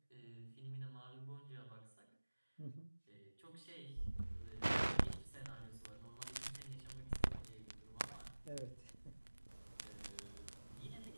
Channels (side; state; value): both; inverted; correlation -1.00